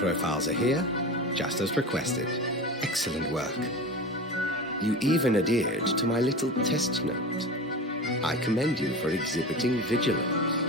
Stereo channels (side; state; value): both; normal; correlation 0.30